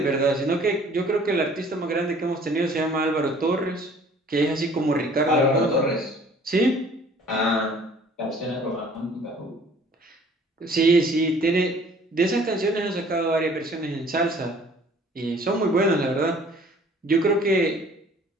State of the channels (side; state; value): both; normal; correlation 0.53